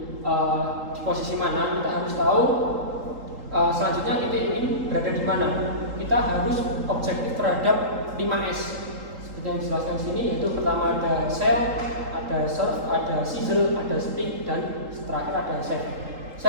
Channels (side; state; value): left; late; 3.8 ms